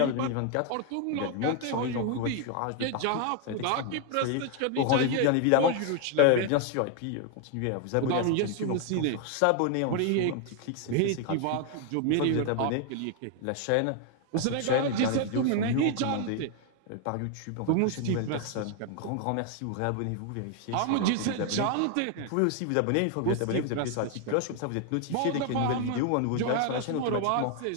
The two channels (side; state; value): both; different; correlation 0.00